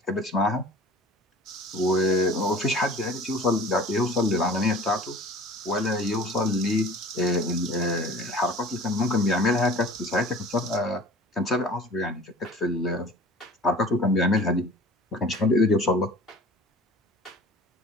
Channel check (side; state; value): both; normal; correlation 0.44